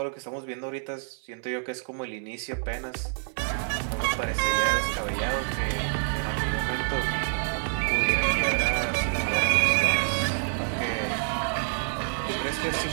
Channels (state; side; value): silent; left; 60 dB below the other